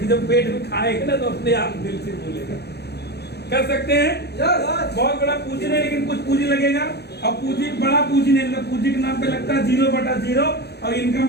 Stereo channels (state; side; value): late; right; 0.48 ms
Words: जब पेट में खाएगा ना तो अपने आप दिल से बोलेगा। कर सकते हैं? बहुत बड़ा पूंजी नहीं, लेकिन कुछ पूंजी लगेगा, और पूंजी बड़ा पूंजी नहीं लगता। पूंजी के नाम पे लगता है 0/0, और इनकम